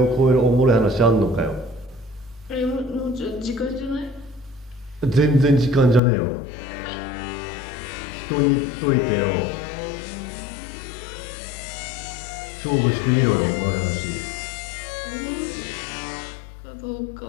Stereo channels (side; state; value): right; drops out; at 6.0 s